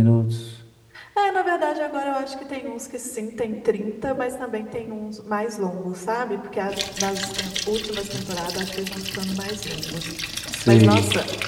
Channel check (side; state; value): both; identical; correlation 1.00